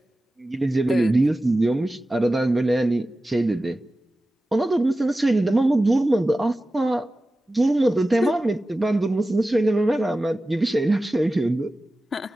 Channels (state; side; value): normal; both; correlation 0.95